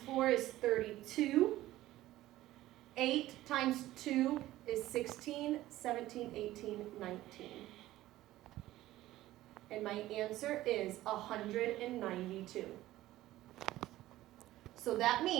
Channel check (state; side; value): quieter; left; 15.6 dB